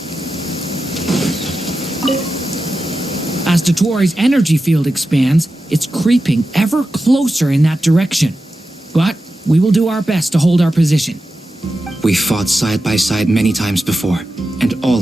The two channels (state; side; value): normal; both; correlation 0.91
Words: As Dottoro's energy field expands, it's creeping ever closer in that direction. But we will do our best to hold our position. We fought side by side many times before, and